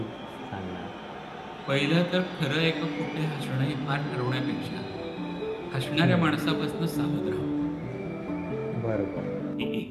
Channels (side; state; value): both; identical; correlation 1.00